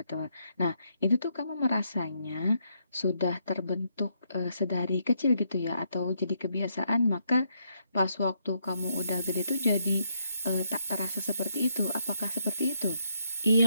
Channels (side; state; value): both; inverted; correlation -0.75